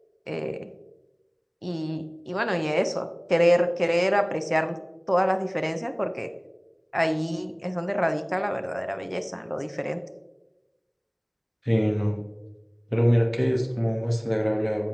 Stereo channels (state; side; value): identical; both; correlation 1.00